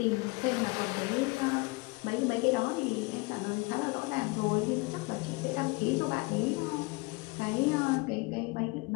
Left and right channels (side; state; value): right; quieter; 26.4 dB